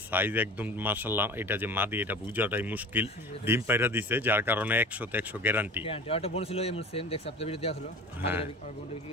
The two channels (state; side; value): normal; both; correlation 0.37